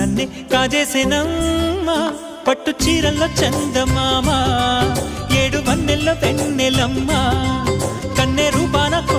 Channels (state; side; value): identical; both; correlation 1.00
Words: కాజేసేనమ్మా పట్టు చీరల్లో చందమామా ఏడు వన్నెల్లో వెన్నెలమ్మా కన్నె రూపాన